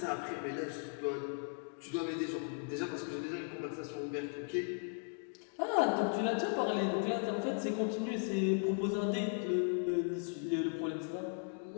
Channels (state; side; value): silent; right; 53 dB below the other